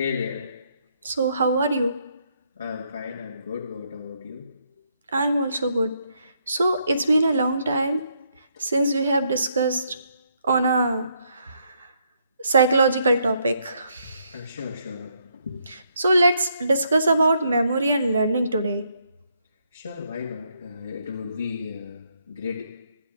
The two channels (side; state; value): both; inverted; correlation -0.74